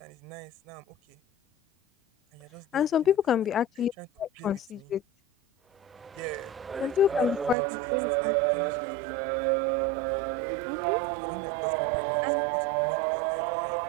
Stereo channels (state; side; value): drops out; left; at 7.6 s